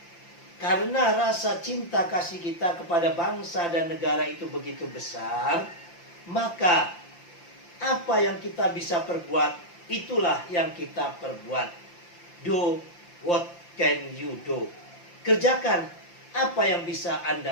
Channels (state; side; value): late; right; 5.8 ms